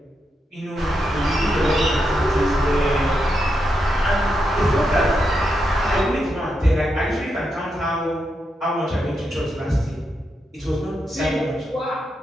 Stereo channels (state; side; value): normal; both; correlation 0.84